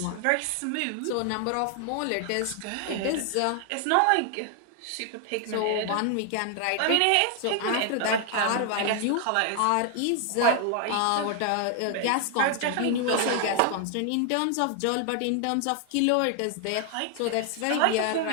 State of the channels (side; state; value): both; different; correlation 0.00